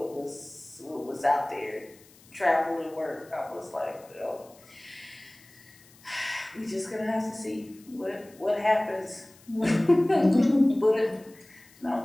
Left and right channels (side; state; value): left; noise; hiss, 26 dB below the sound